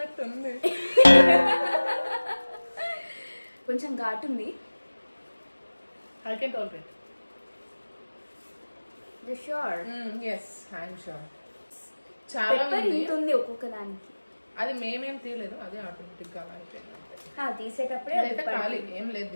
కొంచెం ఘాటు ఉంది. I can tolerate. You sure? Yes, I am sure. చాలా ఉంది ఒక్కొక్క దానికి. అది మేమేం తీయలేదు, అదే ఆటోమేటిక్ గా అయిపోయింది. తీసేటప్పుడే అయితే ఖాళీ ఏం లేదు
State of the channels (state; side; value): inverted; both; correlation -1.00